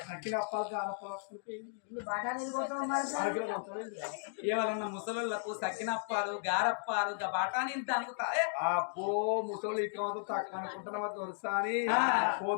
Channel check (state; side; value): silent; right; digital silence